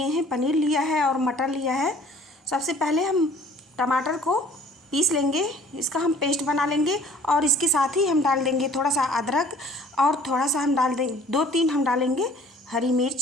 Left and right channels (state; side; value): normal; both; correlation 0.53